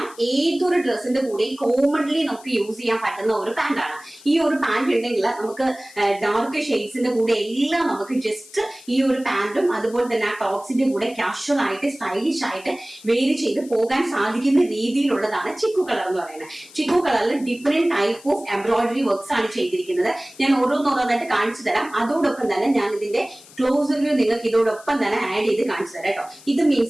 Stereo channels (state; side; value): noise; left; hiss, 22 dB below the sound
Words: ഏതൊരു ഡ്രസ്സിന്റെ കൂടെ കോമൺലി നമുക്ക് യൂസ് ചെയ്യാൻ പറ്റുന്ന ഒരു പാന്റ് ആണ്. ഈ ഒരു പാന്റ് ഉണ്ടെങ്കിൽ നമുക്ക് ഡാർക്ക് ഷെയ്ഡ്സിന്റെ കൂടെ എല്ലാം നമുക്ക് ജസ്റ്റ് ഈ ഒരു പാന്റും അതുപോലെ തന്നെ ആ ടോപ്സിന്റെ കൂടെ കാഷ്വൽ ആയിട്ട് സ്റ്റൈലിഷ് ആയിട്ട് വേരി ചെയ്ത് പോകാൻ സാധിക്കുന്ന രീതിയിലുള്ളതാണ് ചിക്കു കളർ എന്ന് പറയുന്നത്. ചിക്കു കളറിൽ different type of embroidery works ആണ് ചെയ്തിരിക്കുന്നത്. ഞാൻ ഓരോന്നോരോന്നായിട്ട് കാണിച്ചു തരാം. അതോടൊപ്പം തന്നെ ഞാൻ ഇതിന്റെ ക്ലോസർ വ്യൂ നിങ്ങൾക്ക് ഇതോടൊപ്പം തന്നെ ആഡ് ചെയ്ത് കാണിച്ചു തരാം കേട്ടോ. ഇത്